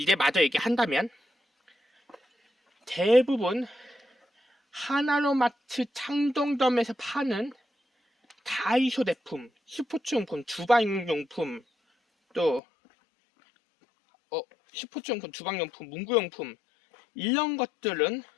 마저 얘기한다면 대부분 하나로마트 창동점에서 파는 다이소 제품, 스포츠용품, 주방용품, 또 스포츠용품, 주방용품, 문구용품 이런 것들은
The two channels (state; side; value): drops out; right; at 12.6 s